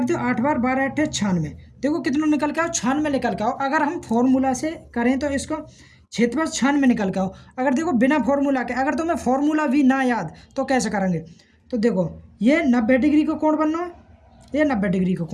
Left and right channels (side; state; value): both; identical; correlation 1.00